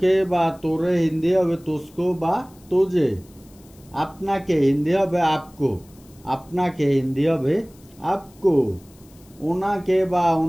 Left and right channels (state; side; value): noise; left; hiss, 28 dB below the sound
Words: বা তোরে হিন্দি হবে তুসকো বা তোজে। আপনাকে হিন্দি হবে আপকো, আপনাকে হিন্দি হবে আপকো। ওনাকে বা